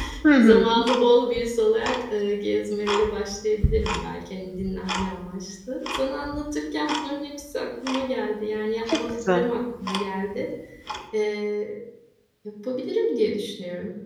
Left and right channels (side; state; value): both; identical; correlation 1.00